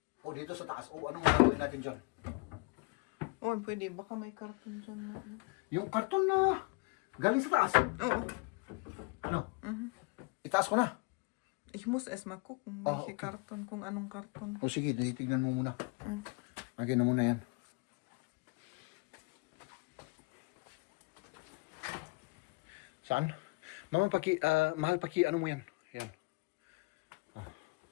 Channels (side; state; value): right; quieter; 29.1 dB